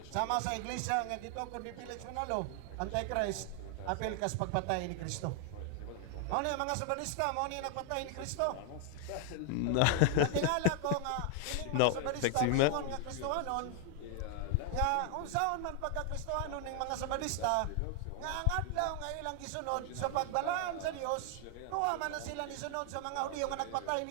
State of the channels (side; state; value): both; different; correlation 0.00